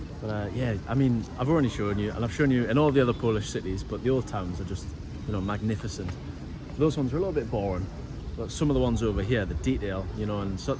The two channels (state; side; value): identical; both; correlation 1.00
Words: But yeah, I mean, I've already shown you, and I've shown you in all the other Polish cities, but the old towns are just, you know, magnificent. Those ones are a little bit boring. But some of the ones over here, the detail, you know, and